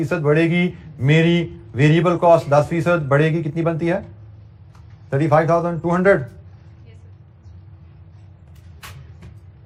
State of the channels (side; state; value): both; identical; correlation 1.00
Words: बढ़ेगी, मेरी वेरिएबल कॉस्ट 10% बढ़ेगी, कितनी बनती है 35,200।